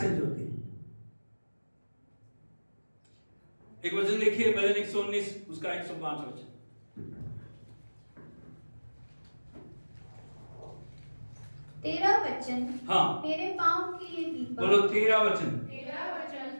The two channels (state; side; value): inverted; both; correlation -1.00